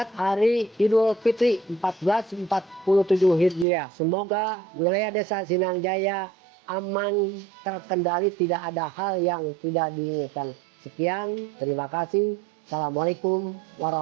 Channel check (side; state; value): left; drops out; at 3.7 s